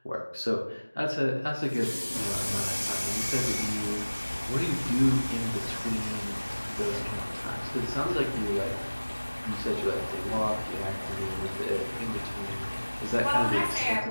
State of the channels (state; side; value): inverted; both; correlation -1.00